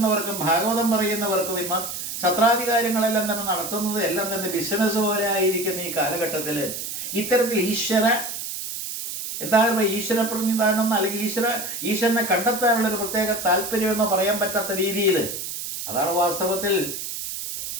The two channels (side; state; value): right; noise; hiss, 6 dB below the sound